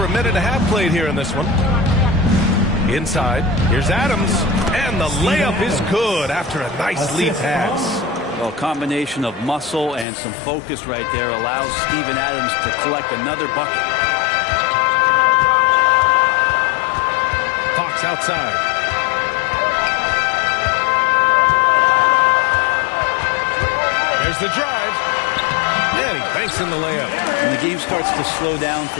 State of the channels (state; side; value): drops out; right; at 10.1 s